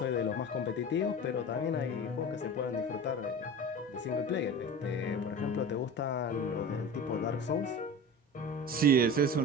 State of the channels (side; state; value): both; normal; correlation 0.32